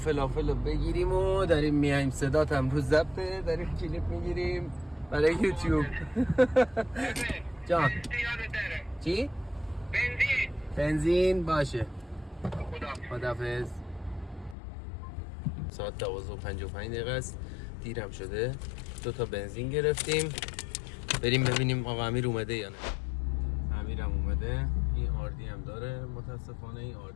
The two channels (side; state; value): right; drops out; at 14.6 s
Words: رو بگیریم و داریم میایم. صدات هم روز ضبطه، داریم کلیپ میگیریم برای یوتیوب. جان چی؟ بنزین باشه. خداحافظ. ساعت 12:55 است، دیرم شده. 2 تا بنزین گرفتیم، بریم ببینیم آقا امیر اومده یا نه. امیرم اومده. این آردی هم داره. متاسفانه این